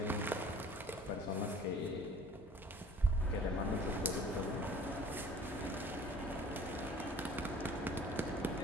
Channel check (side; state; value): both; normal; correlation 0.50